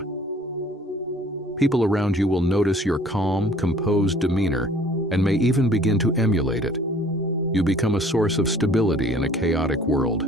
People around you will notice your calm, composed demeanor and may even begin to emulate it. You become a source of stability in a chaotic world.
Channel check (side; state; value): both; normal; correlation 0.54